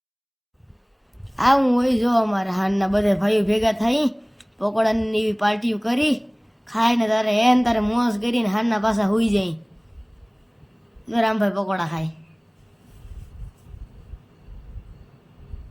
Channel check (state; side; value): identical; both; correlation 1.00